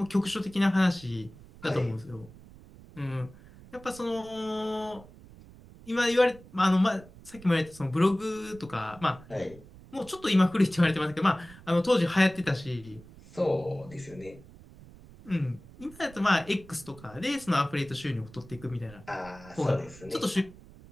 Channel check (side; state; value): right; noise; rumble, 20 dB below the sound